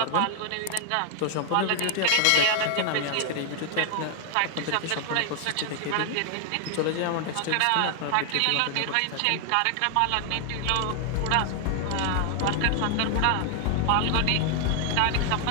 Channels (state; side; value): different; both; correlation 0.00